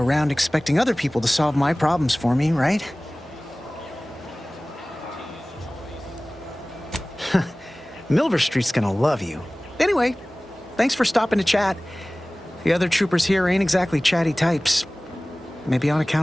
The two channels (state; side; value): normal; both; correlation 0.98